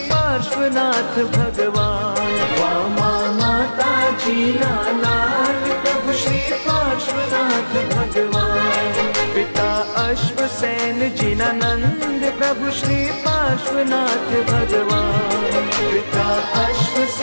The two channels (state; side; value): inverted; both; correlation -1.00